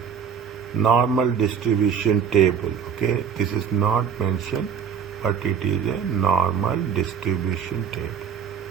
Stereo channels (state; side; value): quieter; left; 7.3 dB